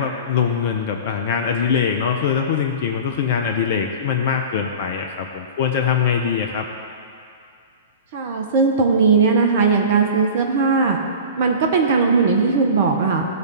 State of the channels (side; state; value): both; inverted; correlation -0.35